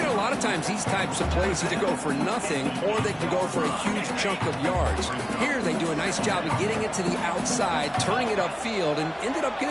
know, a lot of times these types of plays either go for nothing or they can go for a huge chunk of yards. Here they do a nice job of getting it to the outside, turning it upfield, and ended up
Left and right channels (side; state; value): both; identical; correlation 1.00